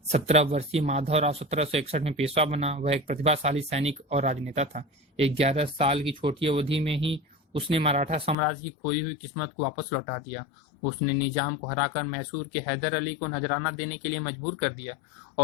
17 वर्षीय माधवराव 1761 में पेशवा बना। वह एक प्रतिभाशाली सैनिक और राजनेता था। 11 साल की छोटी अवधि में ही उसने मराठा साम्राज्य की खोई हुई किस्मत को वापस लौटा दिया। उसने निजाम को हराकर मैसूर के हैदर अली को नजराना देने के लिए मजबूर कर दिया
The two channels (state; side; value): drops out; right; at 8.3 s